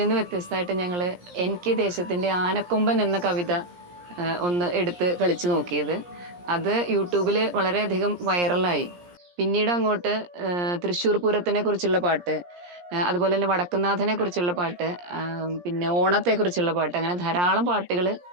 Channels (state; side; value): late; left; 17 ms